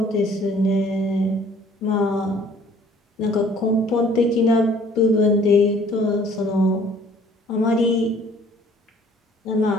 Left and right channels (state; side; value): normal; both; correlation 0.56